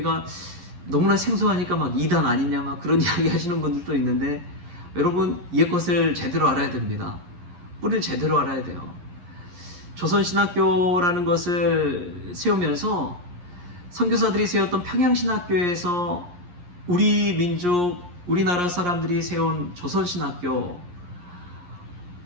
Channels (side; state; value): left; late; 11 ms